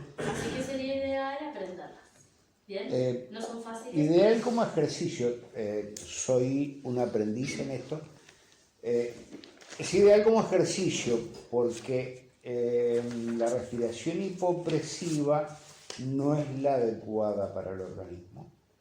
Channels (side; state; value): both; identical; correlation 1.00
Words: Así que sería ideal aprenderlas. Bien, no son fáciles. Ideal como ejercicio, soy un aprendiz en esto, es ideal como ejercicio porque la respiración hipopresiva no es la adecuada para el organismo,